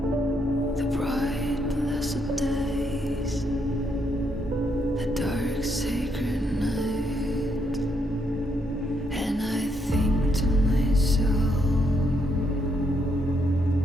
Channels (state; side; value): normal; both; correlation 0.76